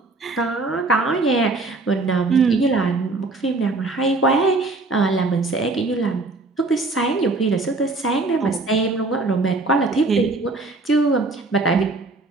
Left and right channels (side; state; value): left; quieter; 3.3 dB